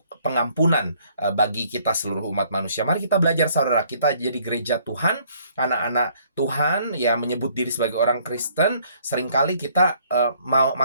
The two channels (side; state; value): both; inverted; correlation -0.62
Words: pengampunan bagi kita seluruh umat manusia. Mari kita belajar, saudara. Kita jadi gereja Tuhan, anak-anak Tuhan yang menyebut diri sebagai orang Kristen. Seringkali kita